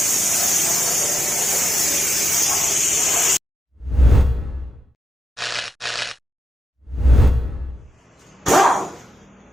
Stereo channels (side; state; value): both; normal; correlation 0.85